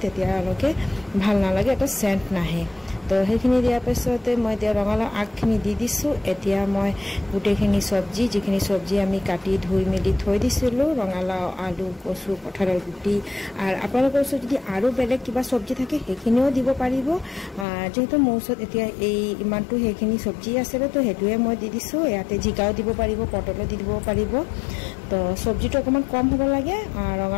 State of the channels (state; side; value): drops out; right; at 17.7 s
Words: তেতিয়ালৈকে ভাল নালাগে, এটা চেণ্ট নাহে। তো সেইখিনি দিয়াৰ পিছতে মই এতিয়া ৰঙালাও আগখিনি দি দিছোঁ। এতিয়া মই গোটেইখিনি চব্জি, যিখিনি চব্জি আমি কাটি ধুই মেলি থৈ দিছিলোঁ, ৰঙালাও, আলু, কচু, কঁঠালৰ গুটি, আৰু আপোনালোকৰ ওচৰত যদি আৰু বেলেগ কিবা চব্জি থাকে সেইখিনিও দিব পাৰিব। যিহেতু মোৰ ওচৰত এতিয়া ইমানটো সেইখিনি চব্জি আছিলে, তো সেইটোৱে মই দি দিছোঁ। ইয়াতে জিকাও দিব পাৰিব, পটলো দি দিব পাৰিব। তো চব্জিটো অকণমান কম হ'ব লাগে,